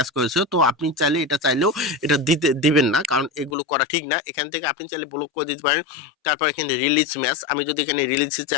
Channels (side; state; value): right; drops out; at 3.6 s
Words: করেছে। তো আপনি চাইলে চাইলেও এটা দিবেন না, কারণ এগুলো করা ঠিক না। এখান থেকে আপনি চাইলে ব্লক করে দিতে পারেন। তারপর এখানে রিলিজ ম্যাচ, আমি যদি এখানে রিলিজে